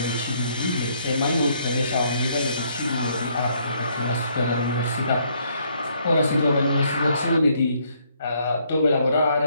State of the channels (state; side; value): inverted; both; correlation -0.69